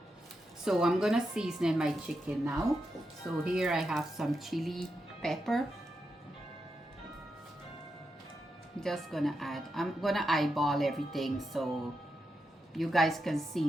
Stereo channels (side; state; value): both; normal; correlation 0.86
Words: So I'm gonna season my chicken now. So here I have some chili pepper. Just gonna add, I'm gonna eyeball everything so you guys can